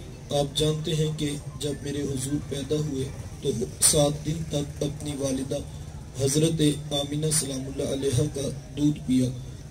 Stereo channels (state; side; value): identical; both; correlation 1.00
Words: آپ جانتے ہیں کہ جب میرے حضور پیدا ہوئے تو 7 دن تک اپنی والدہ حضرت آمینہ سلام اللہ علیہ کا دودھ پیا۔